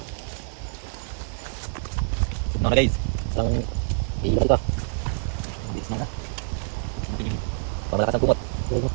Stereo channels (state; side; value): silent; left; 56 dB below the other